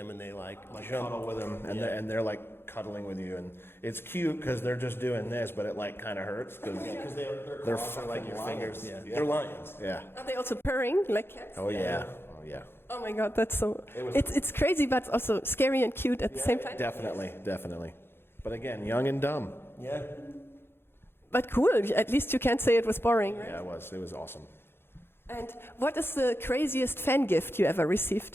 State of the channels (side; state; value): right; late; 0.11 ms